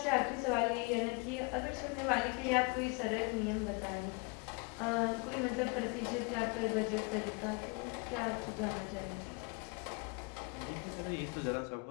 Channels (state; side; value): quieter; right; 31.4 dB